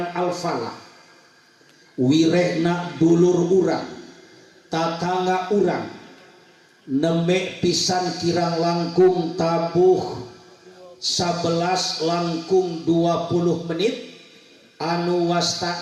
Al-Falah, wirehna dulur urang, tatangga urang, nemek pisan kirang langkung tabuh 11 langkung 20 menit anu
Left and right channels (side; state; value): both; identical; correlation 1.00